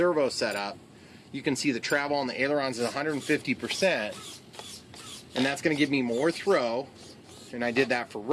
setup, you can see the travel on the ailerons is 150%, and that's going to give me more throw. And I did that for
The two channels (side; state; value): both; identical; correlation 1.00